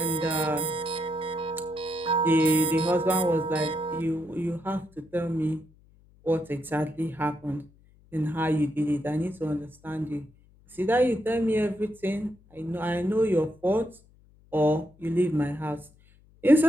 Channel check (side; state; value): left; noise; hum, 29 dB below the sound